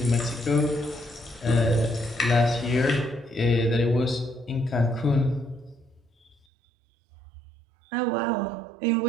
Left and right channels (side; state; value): left; drops out; at 6.4 s